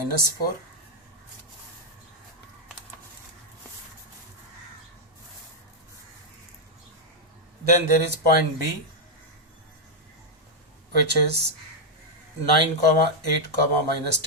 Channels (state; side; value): normal; both; correlation -0.01